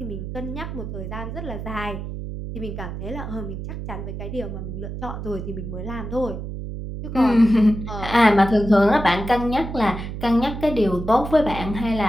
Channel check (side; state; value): right; noise; hum, 7 dB below the sound